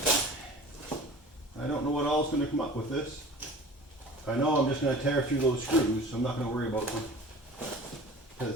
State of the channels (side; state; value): both; normal; correlation 0.41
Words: I don't know what all is going to come up with this. I know I'm just going to tear through those screws, so I'm not going to worry about them.